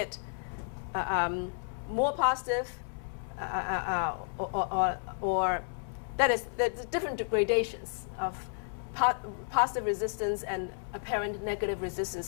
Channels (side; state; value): right; silent; 56 dB below the other